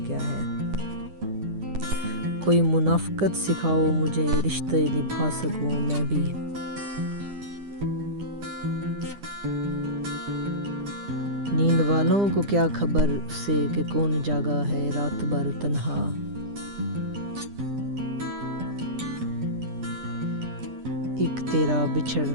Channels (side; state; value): left; late; 10 ms